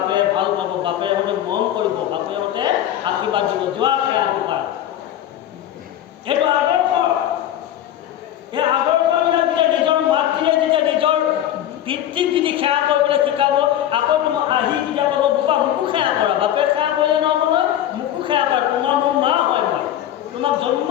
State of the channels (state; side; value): quieter; right; 11.6 dB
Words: ভাল পাব, বাপেহঁতে মৰম কৰিব, বাপেহঁতে আশীৰ্বাদ দিব, যোৱা সেৱা বোপা। এইটো আদৰ্শ। এই আদৰ্শবিলাক যেতিয়া নিজৰ মাতৃয়ে যেতিয়া নিজৰ পিতৃক যদি সেৱা কৰিবলৈ শিকাব, আকৌ তোমাক আহি যেতিয়া ক'ব বোপা মোকো সেৱা কৰা, বাপে সেৱা কৰিলে নহ'ব নহয়, মোকো সেৱা কৰা, তোমাৰ মোৰ মা হয়, মই তোমাক জন্ম